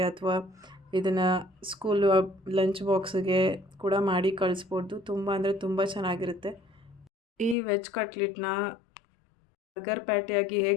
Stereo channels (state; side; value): drops out; right; at 7.6 s